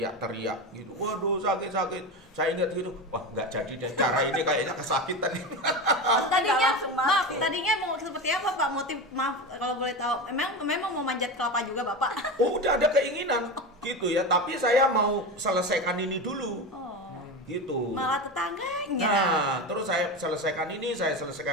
gitu. Waduh, sakit-sakit. Saya ingat gitu, wah nggak jadi deh, cara ini kayaknya kesakitan. Tadinya mau seperti apa Pak? Motif, maaf kalau boleh tahu. Memang mau manjat kelapa juga Bapak? Oh, udah ada keinginan gitu ya, tapi saya mau selesaikan ini dulu. Gitu. Malah tetangganya. Nah, terus saya selesaikan ini, saya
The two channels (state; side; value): normal; both; correlation 0.22